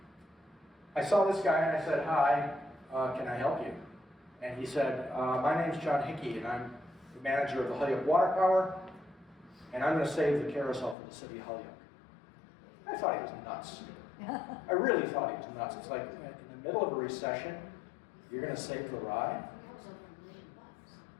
I saw this guy and I said, hi, can I help you? And he said, my name's John Hickey and I'm the manager of the Holyoke Water Power and I'm going to save the carousel for the city of Holyoke. I thought he was nuts. I really thought he was nuts. It's like in the middle of a recession, you're going to save the ride? That was over $1 million.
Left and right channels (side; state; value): right; drops out; at 11.0 s